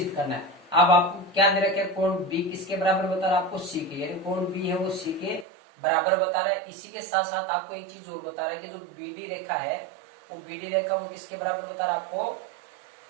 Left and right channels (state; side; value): drops out; left; at 5.5 s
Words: करना है। अब आपको क्या दे रखे? कोण B किसके बराबर बता रहा है? आपको C के, यानी कोण B है वो C के बराबर बता रहा है। इसी के साथ साथ आपको एक चीज और बता रहा है कि जो BD रेखा है वो BD रेखा वो किसके बराबर बता रहा है? आपको